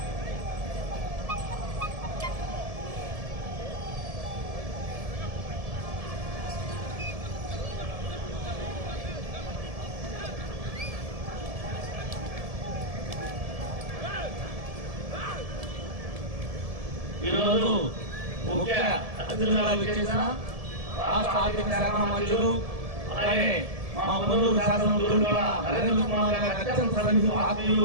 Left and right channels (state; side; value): late; left; 1.7 ms